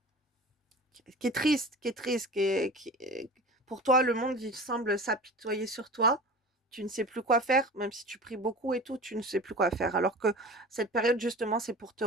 triste, qui est triste, pour toi, le monde, il semble s'apitoyer sur toi. Tu ne sais plus quoi faire, même si tu pries beaucoup et tout, tu ne sais plus quoi faire. Alors que cette période, justement, c'est pour te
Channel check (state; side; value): normal; both; correlation 0.36